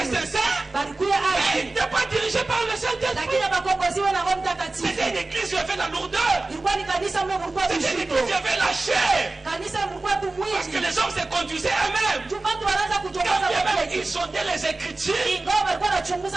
sincères. Mais ils n'étaient pas dirigés par le Saint-Esprit. C'était une église qui avait la lourdeur. C'était une église qui avait la chair. Parce que les hommes se conduisaient eux-mêmes. Ils sondaient les Écritures.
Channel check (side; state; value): left; quieter; 3.2 dB